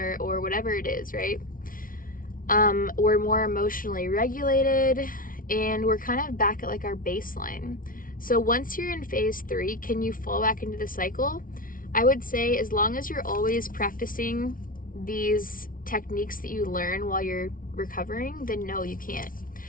or whatever it is, right? We're more emotionally regulated, and we're kind of back at our baseline. So once you're in phase three, can you fall back into the cycle? I would say, as long as you're always practicing these techniques that you learn while you're recovering, then no, you can't.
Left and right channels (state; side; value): late; right; 0.40 ms